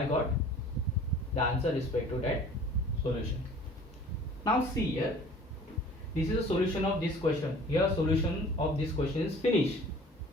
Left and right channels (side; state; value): both; normal; correlation 0.48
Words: got the answer respect to that solution. Now see here, this is a solution of this question. Here solution of this question is finished.